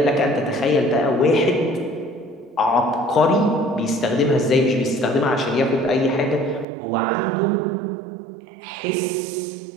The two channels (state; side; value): drops out; left; at 6.7 s